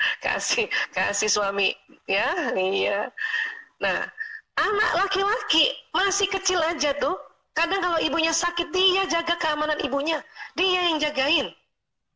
kasih suami ya. Iya. Nah anak laki-laki masih kecil aja tuh. Kadang kalau ibunya sakit, dia jaga keamanan ibunya. Dia yang jagain.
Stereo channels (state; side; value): identical; both; correlation 1.00